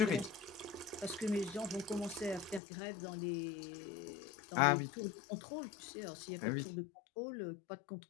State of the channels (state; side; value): drops out; right; at 2.6 s